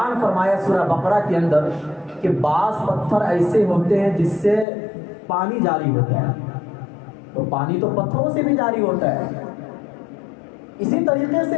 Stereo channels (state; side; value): drops out; right; at 4.7 s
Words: فرمایا سورہ بقرہ کے اندر کہ بعض پتھر ایسے ہوتے ہیں جس سے پانی جاری ہوتا ہے، تو پانی تو پتھروں سے بھی جاری ہوتا ہے۔ اسی طریقے